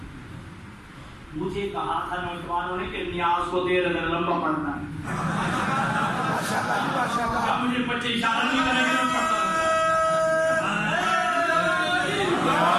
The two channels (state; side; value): identical; both; correlation 1.00